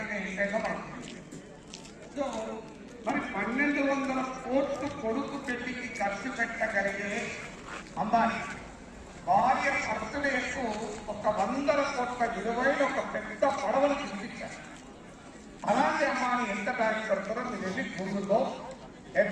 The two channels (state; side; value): identical; both; correlation 1.00